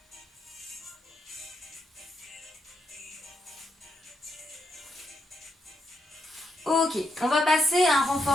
Ok, on va passer à un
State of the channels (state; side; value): normal; both; correlation 0.80